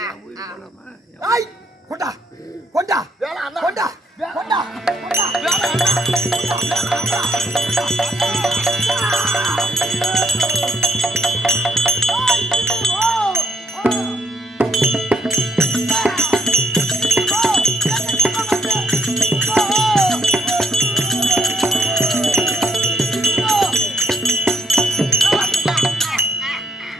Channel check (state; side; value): normal; both; correlation 0.72